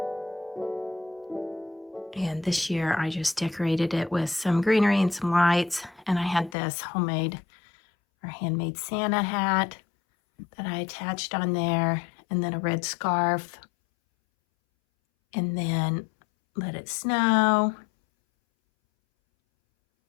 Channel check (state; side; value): drops out; right; at 6.6 s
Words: And this year I just decorated it with some greenery and some lights. And I had this homemade or handmade Santa hat that I attached on there, and then a red scarf, and then let it snow.